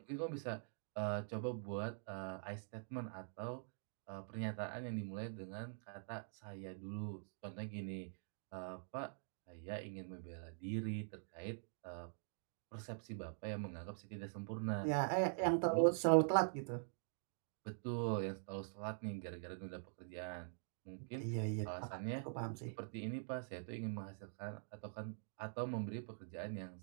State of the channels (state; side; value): silent; left; digital silence